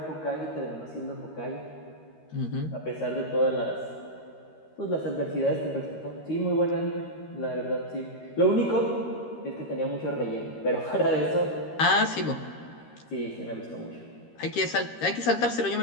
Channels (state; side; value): late; right; 13 ms